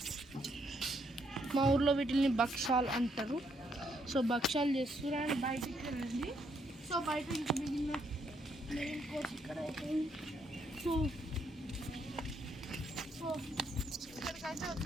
మా ఊర్లో వీటిని భక్షాలు అంటారు. సో భక్షాలు చేస్తున్నారు అండ్ బయటికి రండి. సో బయట ఇంకా మిగిలిన మెయిన్ కోర్స్ ఇక్కడ అయిపోయింది. సో ఇక్కడికైతే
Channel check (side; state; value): both; normal; correlation 0.73